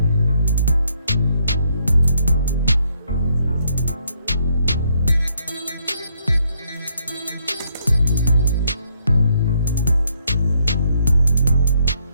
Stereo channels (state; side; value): inverted; both; correlation -0.71